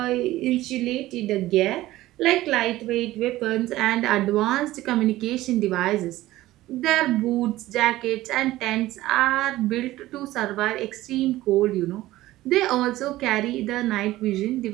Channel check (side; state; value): left; quieter; 16.4 dB